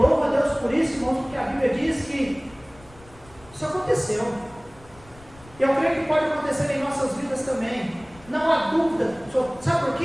a Deus por isso, irmãos, porque a Bíblia diz que isso aconteceu. Eu creio que pode acontecer em nossas vidas também. Não há dúvida. Sabe por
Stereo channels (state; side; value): noise; left; rumble, 23 dB below the sound